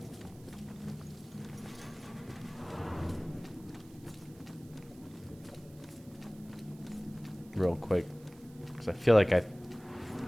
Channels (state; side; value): noise; right; hiss, 25 dB below the sound